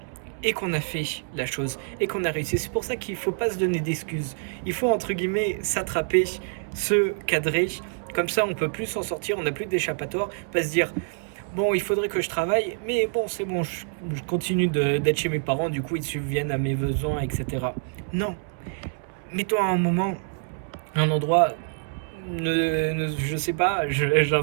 et qu'on a fait la chose et qu'on a réussi. C'est pour ça qu'il ne faut pas se donner d'excuses. Il faut, entre guillemets, s'attraper, se cadrer. Comme ça, on ne peut plus s'en sortir, on n'a plus d'échappatoire. Pas se dire, bon, il faudrait que je travaille, mais bon, c'est bon, je continue d'être chez mes parents, du coup, ils subviennent à mes besoins, etc. Non. Mets-toi à un moment, un endroit, je sais pas,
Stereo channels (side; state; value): left; silent; 61 dB below the other